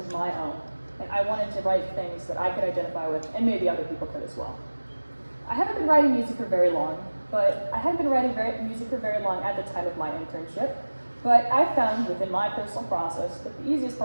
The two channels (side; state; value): both; inverted; correlation -1.00